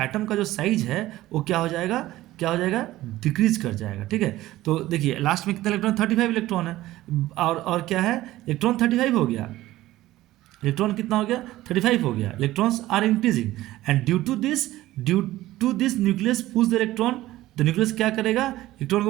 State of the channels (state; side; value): quieter; left; 16.0 dB